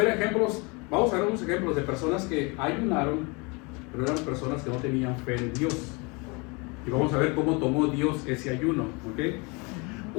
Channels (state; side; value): quieter; right; 29.2 dB